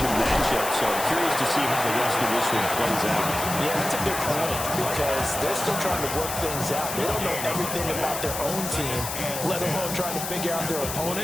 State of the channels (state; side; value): noise; left; hiss, 5 dB below the sound